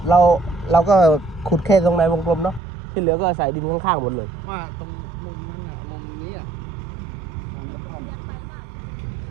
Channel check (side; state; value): left; drops out; at 2.6 s